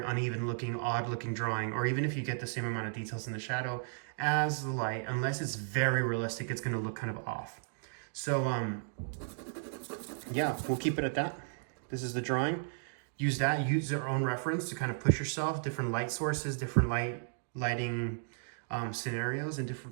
uneven looking, odd looking drawing. Or even if you get the same amount of details in the shadow as the light, unless it's very realistic, it's going to look kind of off. So yeah, we'll keep it at that. This is the drawing. Use your own reference to kind of push yourself, different light sources, different lighting scenarios and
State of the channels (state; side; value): silent; left; digital silence